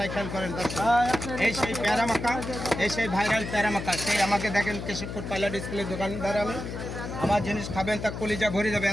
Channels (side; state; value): left; noise; hum, 7 dB below the sound